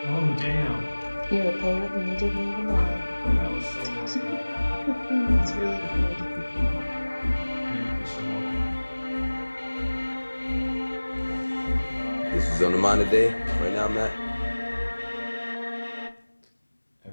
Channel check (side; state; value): both; inverted; correlation -1.00